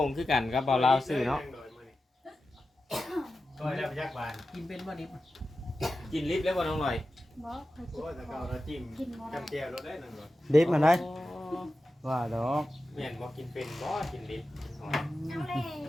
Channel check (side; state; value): both; normal; correlation 0.93